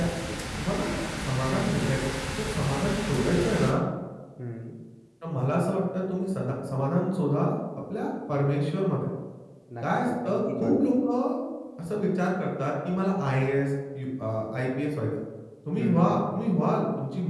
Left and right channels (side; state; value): both; identical; correlation 1.00